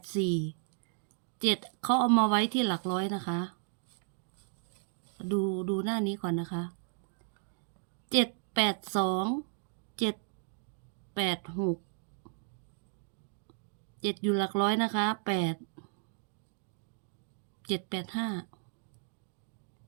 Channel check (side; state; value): left; silent; 55 dB below the other